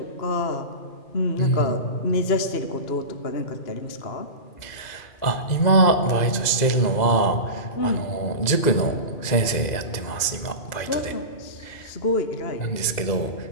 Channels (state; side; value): late; right; 2.0 ms